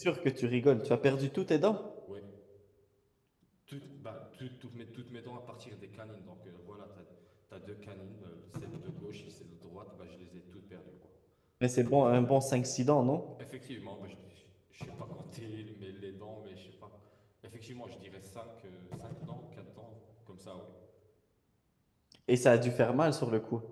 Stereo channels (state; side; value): identical; both; correlation 1.00